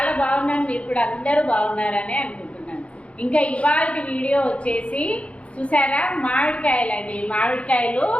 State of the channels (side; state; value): right; late; 0.062 ms